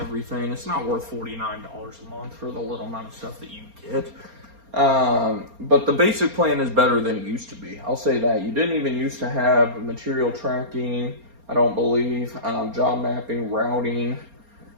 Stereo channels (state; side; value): late; left; 4.3 ms